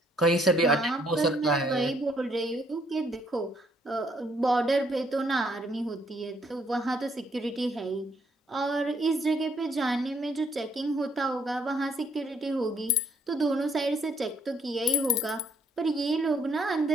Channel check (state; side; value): normal; both; correlation 0.68